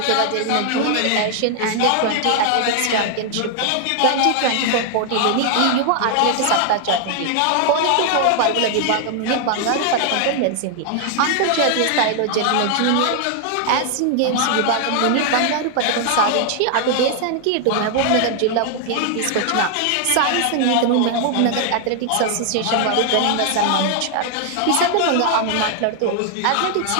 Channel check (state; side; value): different; both; correlation 0.00